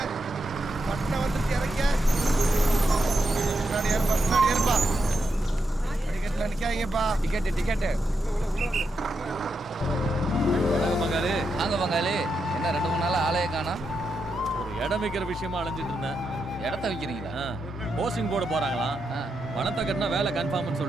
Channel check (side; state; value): both; normal; correlation 0.84